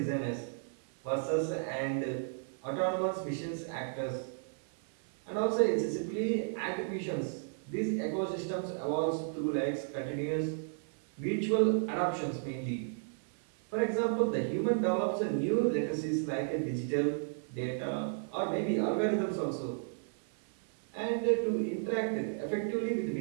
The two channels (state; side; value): silent; left; 55 dB below the other